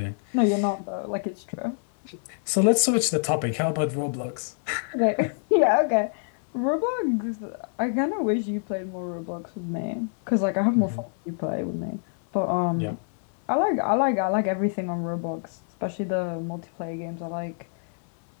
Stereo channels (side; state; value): right; silent; 61 dB below the other